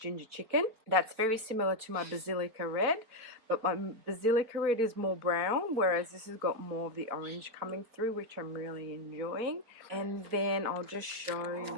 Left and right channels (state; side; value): late; left; 4.5 ms